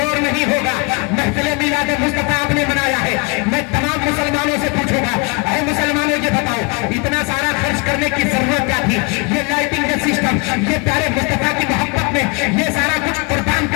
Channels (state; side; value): quieter; right; 29.7 dB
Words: نہیں ہوگا. محفل میلاد مصطفیٰ آپ نے منایا ہے, میں تمام مسلمانوں سے پوچھوں گا, اے مسلمانوں یہ بتاؤ اتنا سارا خرچ کرنے کی ضرورت کیا تھی؟ یہ لائٹنگ کا سسٹم, یہ پیارے مصطفیٰ کی محبت میں یہ سارا کچھ قربان